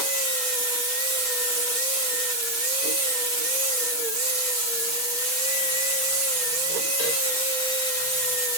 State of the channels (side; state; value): right; late; 6.0 ms